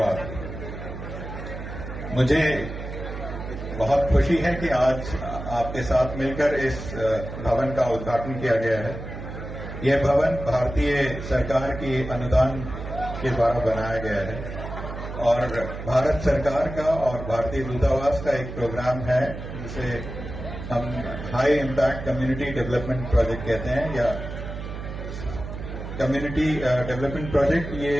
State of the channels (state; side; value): noise; right; hum, 9 dB below the sound